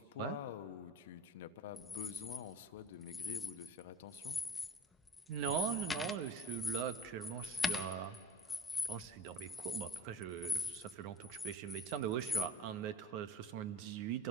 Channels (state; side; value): normal; both; correlation 0.40